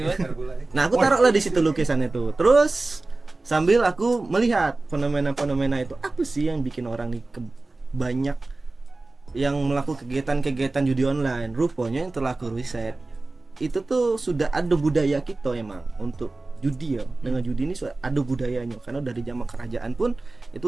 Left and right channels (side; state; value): left; quieter; 3.2 dB